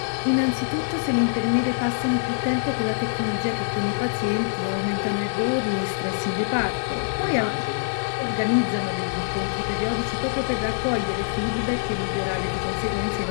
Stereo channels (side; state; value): right; silent; digital silence